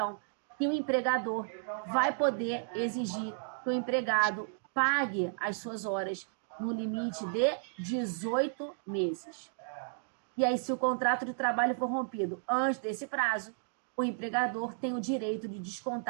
que o empregador vai poder exigir que o empregado pague as suas horas no limite de 18 meses. E aí, se o contrato de trabalho for rompido antes desse prazo, o empregador tem o direito de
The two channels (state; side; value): silent; left; digital silence